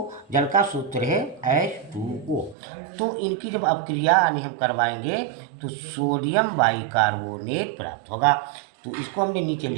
का सूत्र है H2O। तो इनकी जब अपक्रिया यानी हम करवाएंगे तो सोडियम बाइकार्बोनेट प्राप्त होगा। तो इसको हमने नीचे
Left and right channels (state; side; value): drops out; left; at 2.6 s